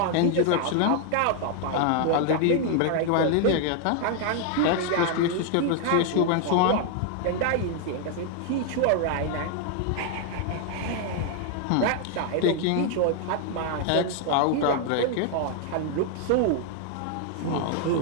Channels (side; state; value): both; different; correlation 0.00